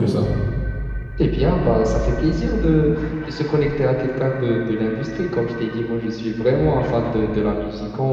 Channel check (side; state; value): both; identical; correlation 1.00